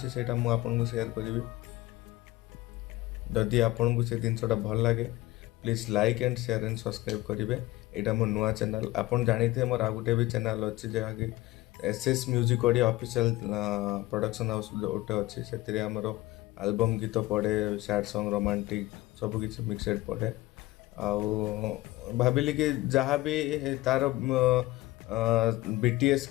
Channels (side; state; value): right; quieter; 18.6 dB